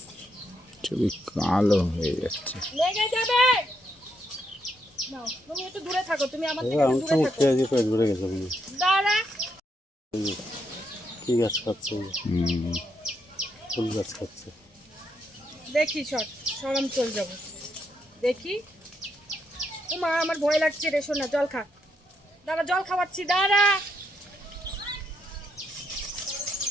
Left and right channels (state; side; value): normal; both; correlation 0.78